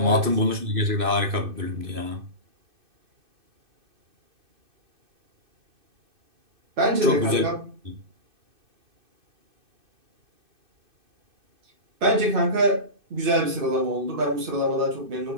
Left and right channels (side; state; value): left; late; 2.6 ms